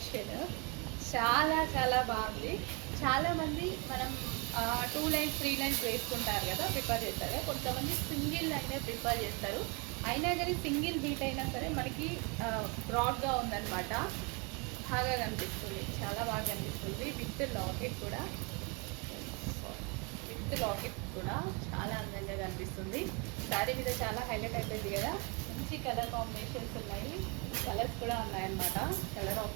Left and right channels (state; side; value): quieter; left; 31.8 dB